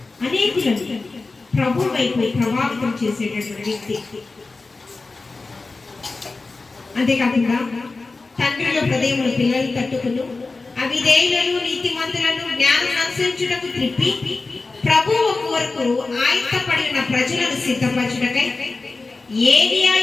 అనేకులను ప్రభు వైపు ప్రభావితం చేసేటటువంటి వ్యక్తి. అంతేకాకుండా తండ్రుల హృదయములు పిల్లలు తట్టుకును, అవిధేయులను నీతిమంతులను జ్ఞానం అనుసరించుటకు త్రిప్పి ప్రభువు కొరకు ఆయత్తపడి ఉన్న ప్రజలను సిద్ధపరచుటకై ఏలియా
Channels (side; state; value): right; quieter; 3.7 dB